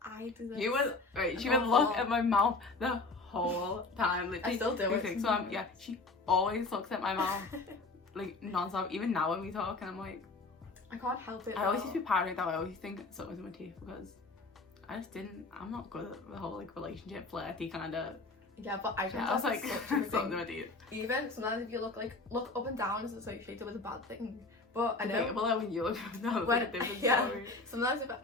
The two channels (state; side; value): quieter; right; 3.5 dB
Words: I do this. You would right. She would look at my mouth the whole time. Literally, I still do it. So yeah, she always looks at my mouth like non-stop. Even now when we talk, and I'm like, I can't help it. I always used to be paranoid that I always think something's in my teeth because I just didn't. I'm not good at the whole like relationship flirty kind of. Yeah, but I was like something in my teeth. Even sometimes if you look up and down as associated with a bad thing. But I know. Well, when you look up and down, it's like a different story. Sometimes if